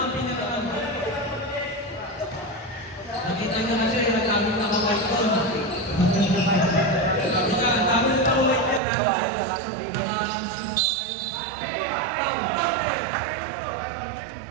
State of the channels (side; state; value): left; drops out; at 8.8 s